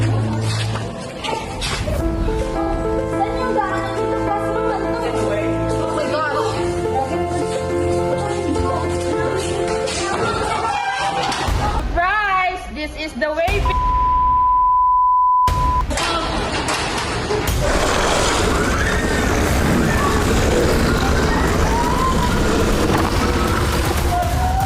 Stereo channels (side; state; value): both; identical; correlation 1.00